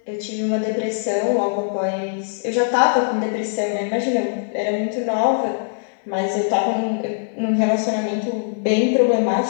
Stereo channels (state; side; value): silent; right; digital silence